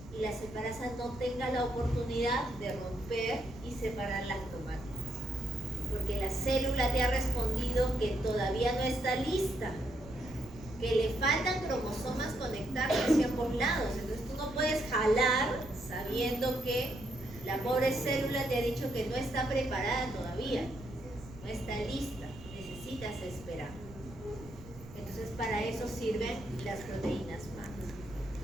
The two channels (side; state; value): right; noise; rumble, 16 dB below the sound